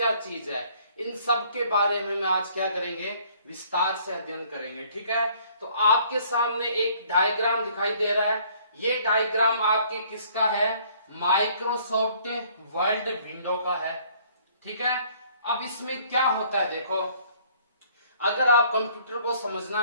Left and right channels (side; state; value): both; inverted; correlation -0.59